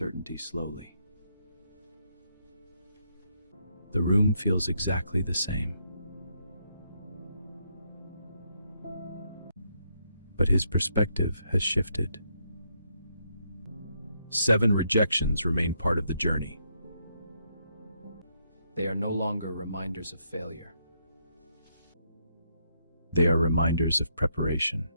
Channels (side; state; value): both; inverted; correlation -0.77